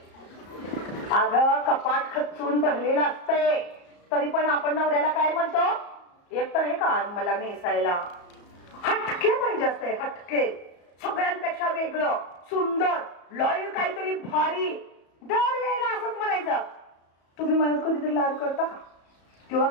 अगं कपाट खचून भरलेलं असतंय तरी पण आपण नवऱ्याला काय म्हणतो? एक तर हे का मला नेसायला हटके पाहिजे असते. हटके, सगळ्यांपेक्षा वेगळं, सुंदर, लॉयल, काहीतरी भारी. दरवेळेला असंच म्हणायचं. तुम्ही मला कधीतरी लाड करता का? किंवा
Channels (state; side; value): late; right; 34 ms